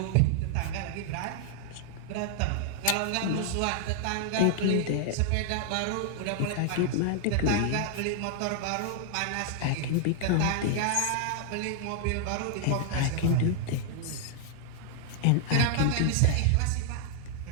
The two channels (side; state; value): both; different; correlation 0.00